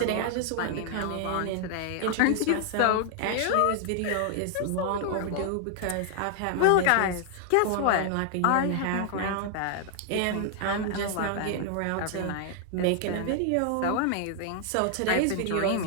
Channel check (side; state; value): both; different; correlation 0.00